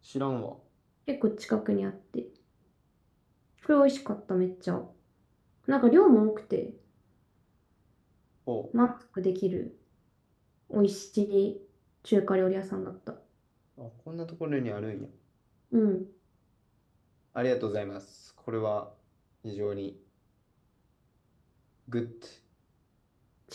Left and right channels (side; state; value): both; identical; correlation 1.00